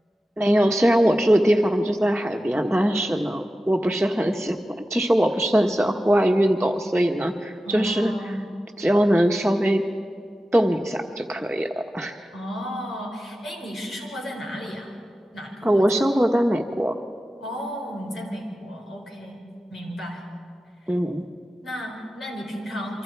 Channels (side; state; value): both; normal; correlation 0.93